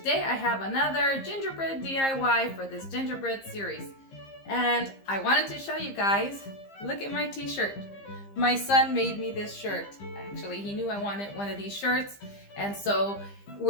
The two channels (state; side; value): late; right; 15 ms